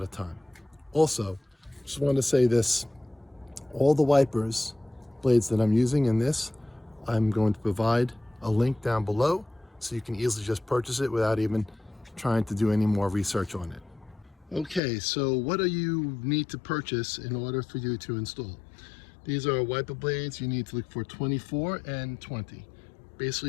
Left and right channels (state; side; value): drops out; right; at 14.8 s